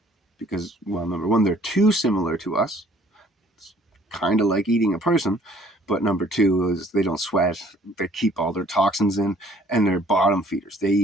because, well, number one, they're too similar to us. It's kind of like eating a person. But number two is they don't sweat. They keep all their toxins in, and they're bottom feeders. They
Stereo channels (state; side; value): normal; both; correlation 0.57